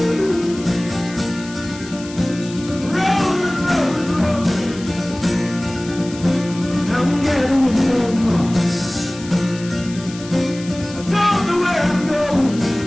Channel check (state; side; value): noise; left; hiss, 16 dB below the sound